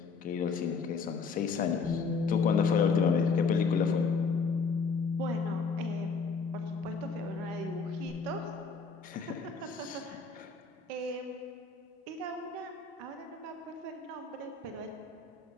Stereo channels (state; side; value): quieter; right; 4.9 dB